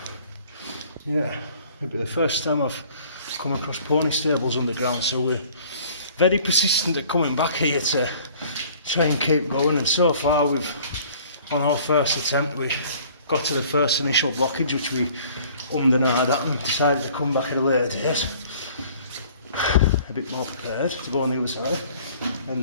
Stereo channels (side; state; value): both; inverted; correlation -0.53